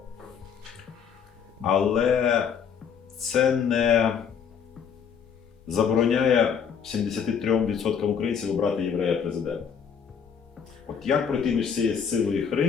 Але це не забороняє 73% українців обрати єврея президента. От як пройти між цією силою і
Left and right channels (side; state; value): right; quieter; 7.1 dB